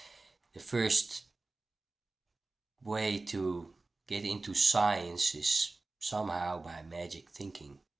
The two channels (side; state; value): left; quieter; 3.3 dB